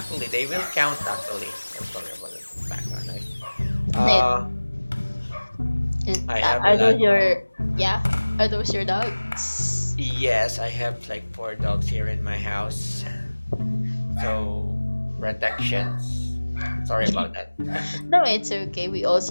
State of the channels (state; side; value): inverted; both; correlation -1.00